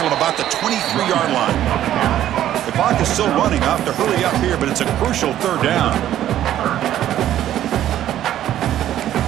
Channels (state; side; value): quieter; left; 12.0 dB